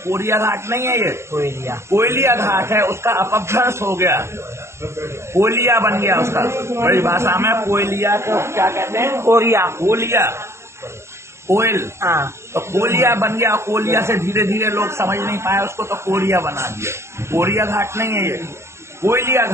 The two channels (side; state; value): left; late; 0.13 ms